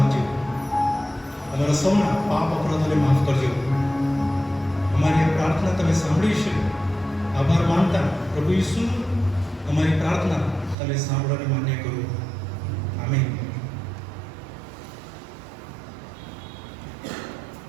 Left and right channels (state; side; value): drops out; left; at 10.8 s